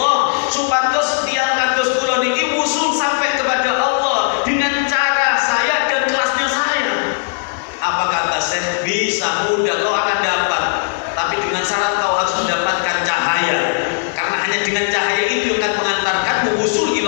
supados tiang kados kula niki usul sampai kepada Allah dengan cara saya dan kelasnya saya. Apa kata Syekh? Bisa, mudah, kau akan dapat, tapi dengan syarat kau harus mendapatkan cahaya, karena hanya dengan cahaya itu yang akan mengantarkanmu usul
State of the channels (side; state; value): right; silent; digital silence